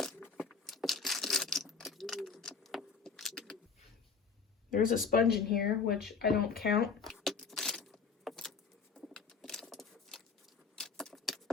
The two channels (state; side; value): quieter; right; 5.5 dB